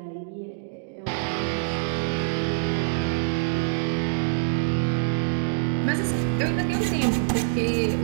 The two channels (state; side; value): silent; left; digital silence